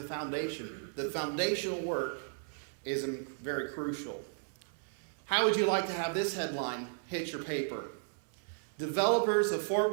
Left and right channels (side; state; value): left; silent; 55 dB below the other